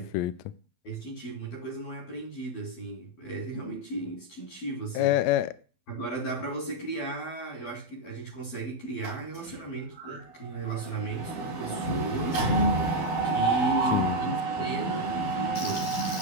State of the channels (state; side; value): late; right; 12 ms